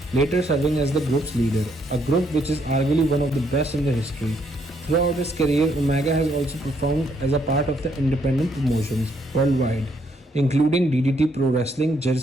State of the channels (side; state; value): both; normal; correlation 0.72